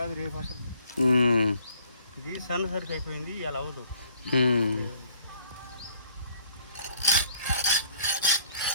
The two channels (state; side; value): inverted; both; correlation -0.59